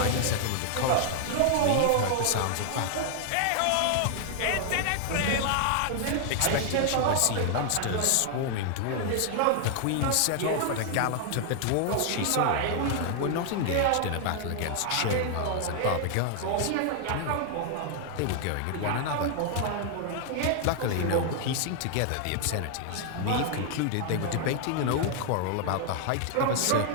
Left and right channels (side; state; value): both; different; correlation 0.00